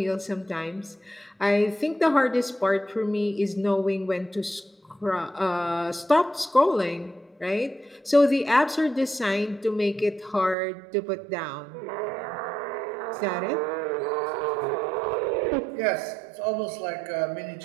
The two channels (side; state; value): left; drops out; at 10.6 s